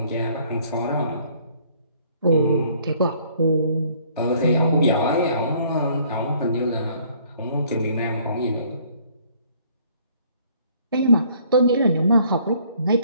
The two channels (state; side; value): inverted; both; correlation -0.60